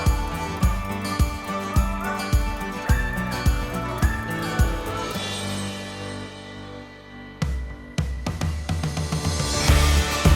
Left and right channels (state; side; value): identical; both; correlation 1.00